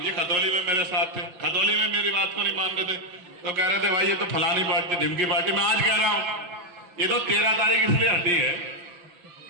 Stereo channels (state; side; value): late; left; 6.0 ms